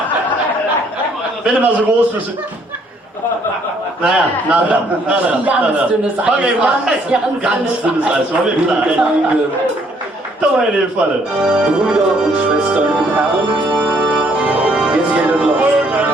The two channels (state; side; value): normal; both; correlation 0.65